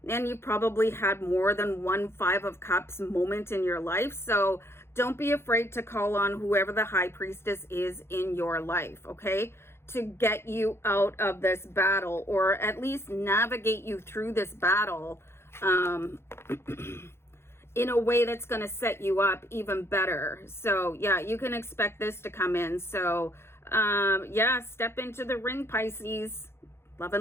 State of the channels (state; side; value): late; right; 0.12 ms